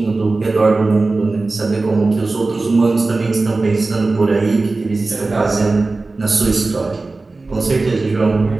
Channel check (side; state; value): left; quieter; 3.5 dB